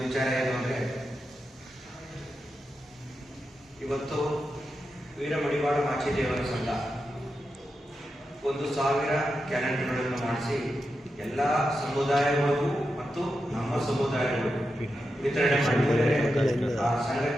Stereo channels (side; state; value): both; normal; correlation 0.88